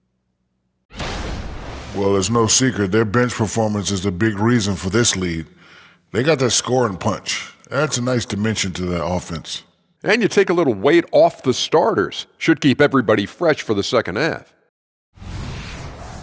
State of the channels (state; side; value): identical; both; correlation 1.00